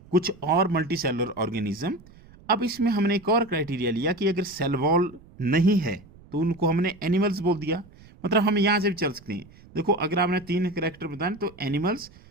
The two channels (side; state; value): right; noise; rumble, 24 dB below the sound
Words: कुछ और मल्टीसेलुलर ऑर्गेनिज्म। अब इसमें हमने एक और क्राइटेरिया लिया कि अगर सेल वॉल नहीं है तो उनको हमने एनिमल्स बोल दिया, मतलब हम यहाँ से भी चल सकते हैं। देखो अगर आपने 3 कैरेक्टर बताए तो animals,